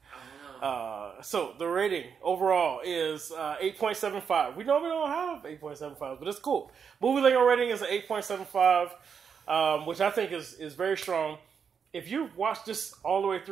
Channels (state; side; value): quieter; left; 6.7 dB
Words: so the rating overall is 8.75. We normally don't have 8.75, but it's cool. Movie Lingo rating is an 8.75, which I think is very strong. If you watched this all the way